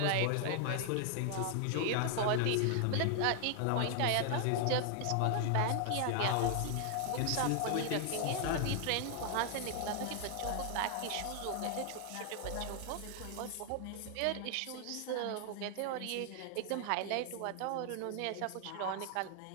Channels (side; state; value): both; different; correlation 0.00